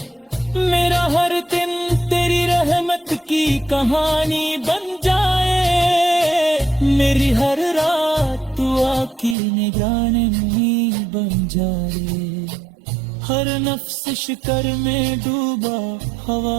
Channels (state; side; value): drops out; left; at 9.3 s